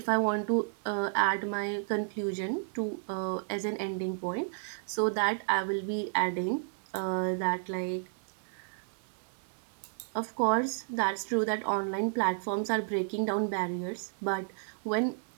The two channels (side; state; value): left; silent; digital silence